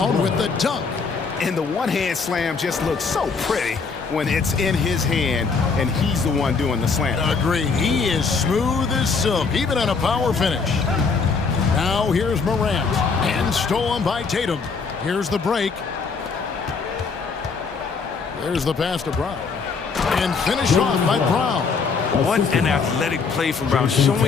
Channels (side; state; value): right; quieter; 5.0 dB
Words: with the dunk. And the one-hand slam just looks so pretty when it's in his hand and he's the one doing the slam. Agreed. He is smooth as silk, even on a power finish. Now here's Morant. And stolen by Tatum. Here's the break. There's the pass to Brown. And finished off by Brown. What an athletic play from Brown,